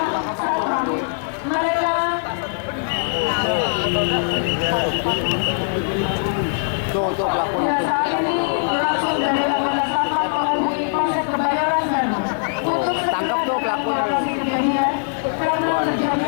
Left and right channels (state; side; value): silent; right; digital silence